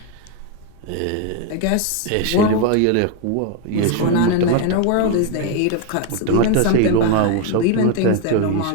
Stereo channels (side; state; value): both; different; correlation 0.01